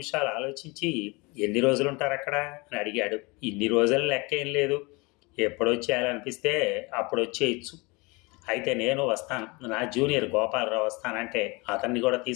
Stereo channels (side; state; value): right; quieter; 26.5 dB